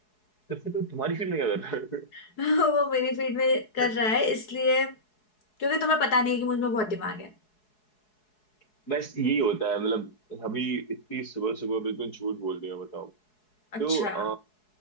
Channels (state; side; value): late; right; 4.7 ms